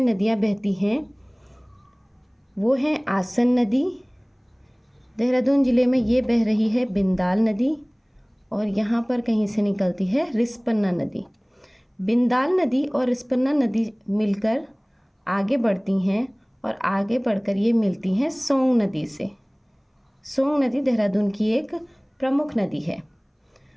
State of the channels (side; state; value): both; identical; correlation 1.00